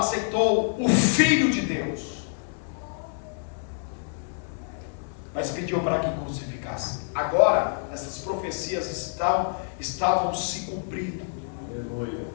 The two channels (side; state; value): right; silent; digital silence